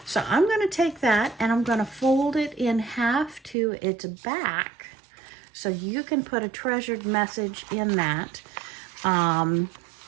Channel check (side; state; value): left; drops out; at 3.6 s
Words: So I'm going to take that and I'm going to fold it in half to its back. So you can put a treasured message in that.